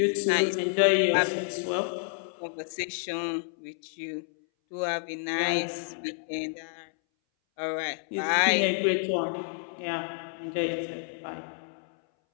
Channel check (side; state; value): right; silent; 58 dB below the other